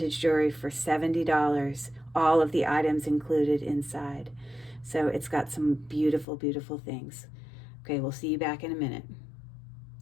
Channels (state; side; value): drops out; right; at 6.2 s